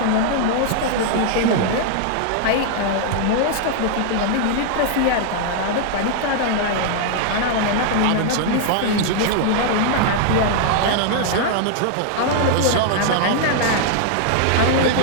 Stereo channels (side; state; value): both; different; correlation -0.01